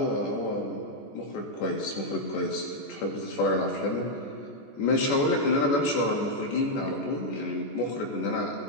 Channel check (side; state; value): right; late; 14 ms